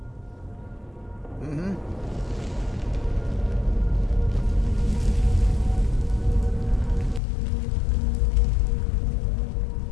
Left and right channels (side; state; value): right; drops out; at 7.2 s